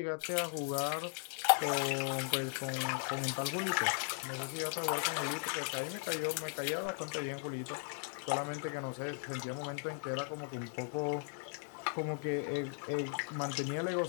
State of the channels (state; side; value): silent; right; 53 dB below the other